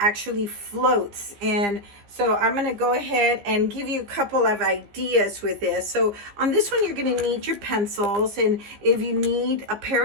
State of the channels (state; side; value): late; left; 15 ms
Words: floats? And so I'm going to go ahead and give you a couple of ideas with this. So on this one, you're going to need your pencils, and if you need a